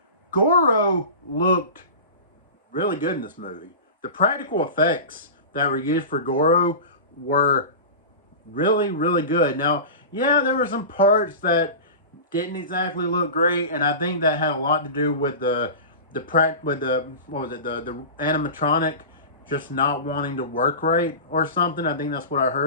Goro looked really good in this movie. The practical effects that were used for Goro were really, really good. Now, yeah, there were some parts that didn't exactly look great, and I think that had a lot to do with the what was it, the animatronic just not wanting to work right or something. I think that's what I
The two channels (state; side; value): inverted; both; correlation -0.30